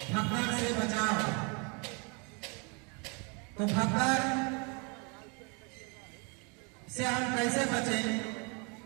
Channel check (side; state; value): left; quieter; 32.8 dB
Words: भगदड़ से बचाव। तो भगदड़ से हम कैसे बचें?